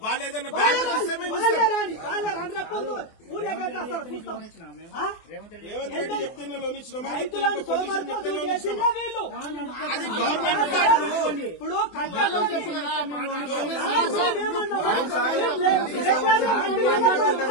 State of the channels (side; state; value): right; late; 24 ms